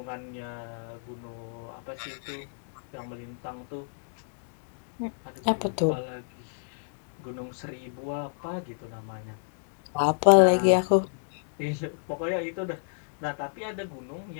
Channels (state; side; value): silent; right; digital silence